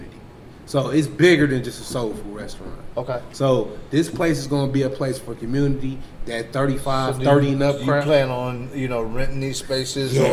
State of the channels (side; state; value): both; identical; correlation 1.00